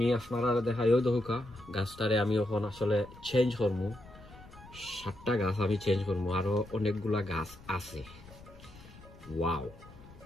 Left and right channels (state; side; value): noise; left; rumble, 20 dB below the sound